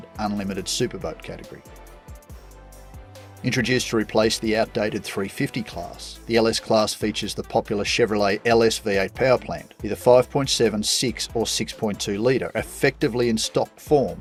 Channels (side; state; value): both; identical; correlation 1.00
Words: unlimited superboat category. Introduced to replace the outdated 350 class, the LS class features the popular Chevrolet LS V8 power plant, either 5.7, 6 or 6.2 litre, effectively in stock form